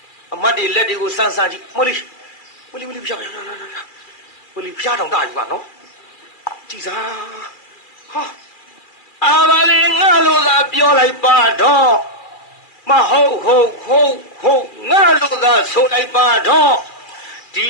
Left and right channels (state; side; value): late; right; 2.4 ms